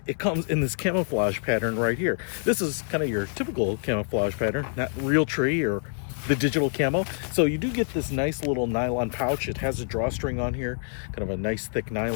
it comes in this camouflage pattern right here. This is kind of your typical camouflage pattern, not real tree or the digital camo. So you do get this nice little nylon pouch. It has a drawstring on here, kind of a nice thick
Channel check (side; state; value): right; silent; 61 dB below the other